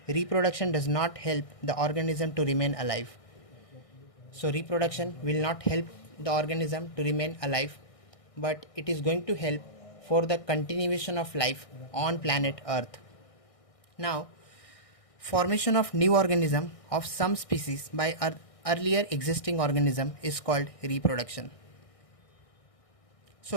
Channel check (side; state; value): right; late; 1.6 ms